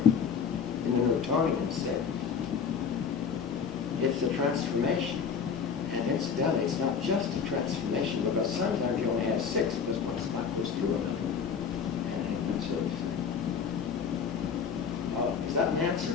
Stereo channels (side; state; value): right; quieter; 6.5 dB